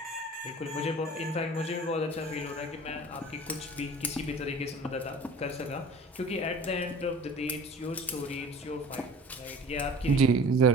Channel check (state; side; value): normal; both; correlation 0.43